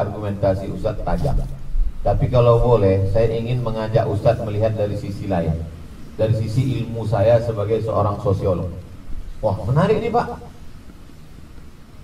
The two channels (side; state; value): both; identical; correlation 1.00